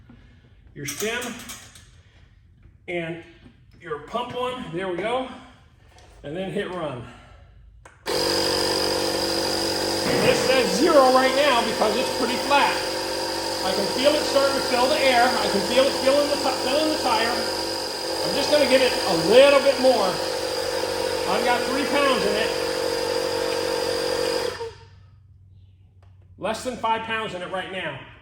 stem and your pump on. There we go. And then hit run. And this says 0 right now because it's pretty flat. I can feel it starting to fill the air. I can feel it filling the tire. I'm just going to give it a little bit more. I've got 3 pounds in it. Less than 5 pounds in it right now.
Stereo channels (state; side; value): identical; both; correlation 1.00